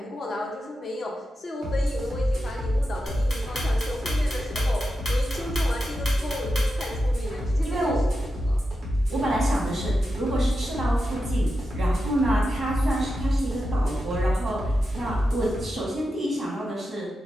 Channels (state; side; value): normal; both; correlation 0.89